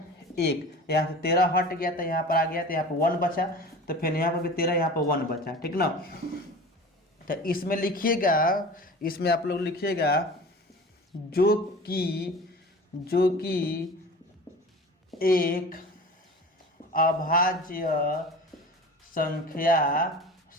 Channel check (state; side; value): normal; both; correlation 0.37